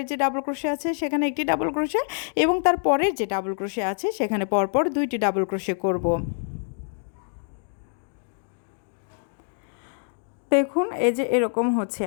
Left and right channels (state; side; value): silent; right; digital silence